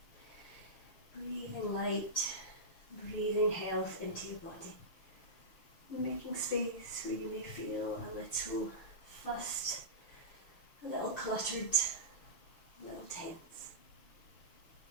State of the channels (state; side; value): late; right; 6.6 ms